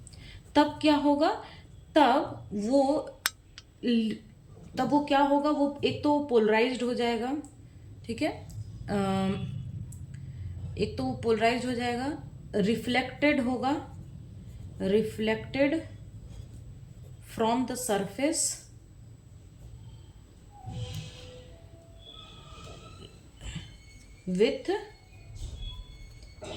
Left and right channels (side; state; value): both; identical; correlation 1.00